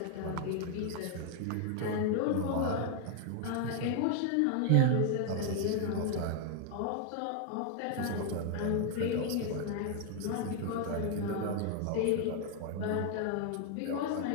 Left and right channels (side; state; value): both; different; correlation 0.00